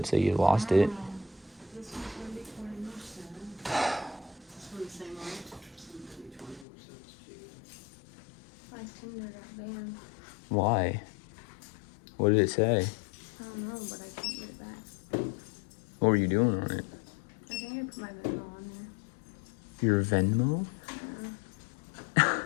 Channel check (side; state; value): right; drops out; at 6.7 s